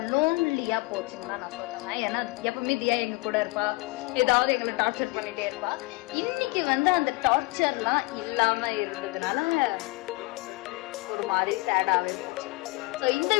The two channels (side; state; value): right; quieter; 23.7 dB